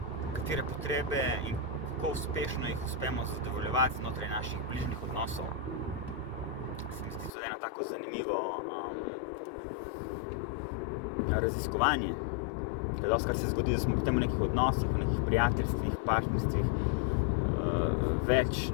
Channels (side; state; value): right; drops out; at 7.3 s